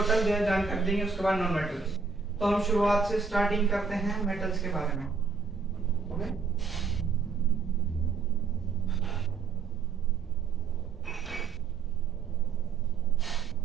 जो है जानकारी देंगे, उसके बाद नॉन मेटल्स। तो हम शुरुआत से स्टार्टिंग करते हैं मेटल्स के बारे में। Okay,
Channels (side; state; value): left; quieter; 5.0 dB